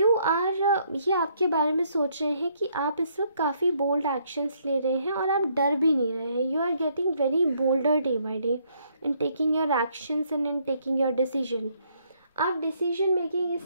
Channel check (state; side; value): inverted; both; correlation -0.69